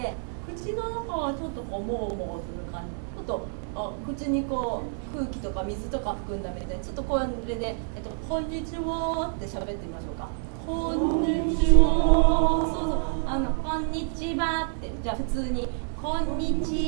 口の中はちょっとこうもうもうする感じ、ちょっと口にこう空気とか水とか含んだみたいに、ちょっとこれで、こんにちはって喋ってみましょうか。こんにちは。そうそう、こんにちはって、じゃあ普通にこんに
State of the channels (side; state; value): left; silent; 60 dB below the other